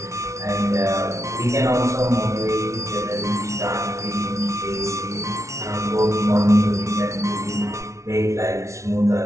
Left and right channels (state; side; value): late; left; 0.14 ms